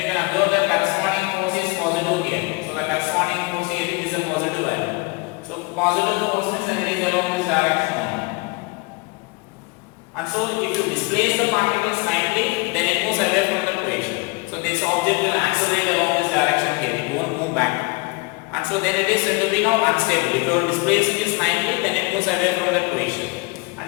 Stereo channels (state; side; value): quieter; right; 27.9 dB